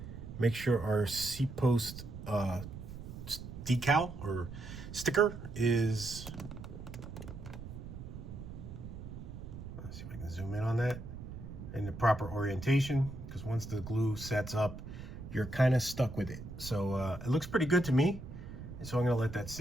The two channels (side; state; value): right; noise; rumble, 11 dB below the sound